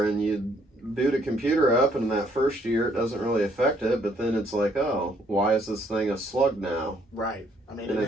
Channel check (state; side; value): normal; both; correlation 0.67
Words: and you boot a computer up, and in that first year it doesn't really affect it, but then it's like, oh, why is this thing a slug now? Right. I mean, and